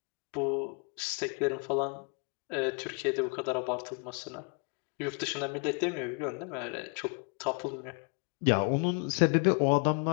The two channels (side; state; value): right; quieter; 37.4 dB